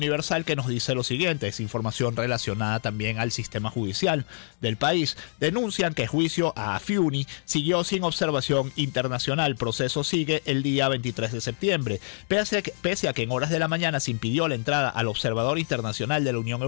que nos dice lo siguiente, es información relacionada también al sistema judicial del país. Denuncian que juicio a Afiuni siguió sin observación internacional, proceso sigue el día 23 de septiembre. Pese a que en horas de la mañana se impidió la entrada al observador internacional de la Unión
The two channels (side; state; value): right; silent; 61 dB below the other